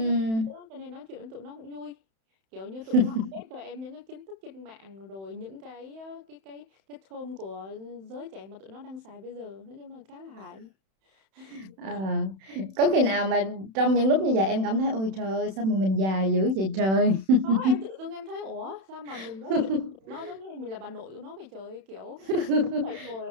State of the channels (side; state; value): left; late; 31 ms